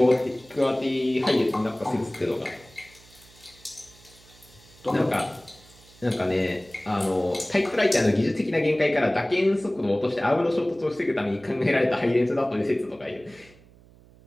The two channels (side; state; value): right; noise; hum, 25 dB below the sound